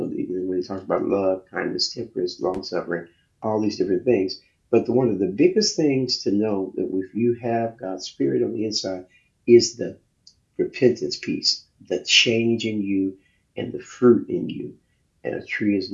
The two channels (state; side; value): identical; both; correlation 1.00